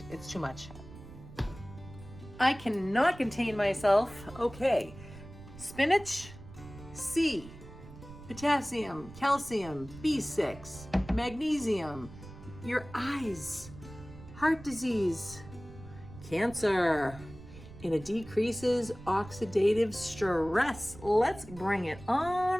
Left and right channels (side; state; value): right; noise; rumble, 16 dB below the sound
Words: it's too much. I cannot contain myself. Okay, spinach, C, potassium, calcium, B6, magnesium, your eyes, heart disease, cancer, and it decreases oxidative stress. Let's bring it